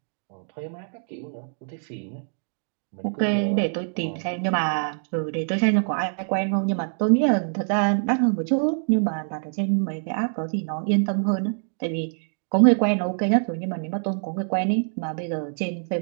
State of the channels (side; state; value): left; silent; digital silence